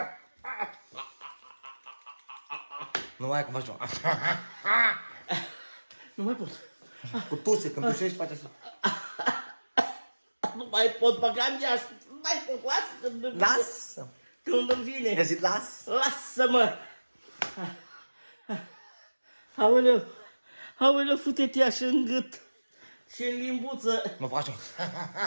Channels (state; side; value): inverted; both; correlation -1.00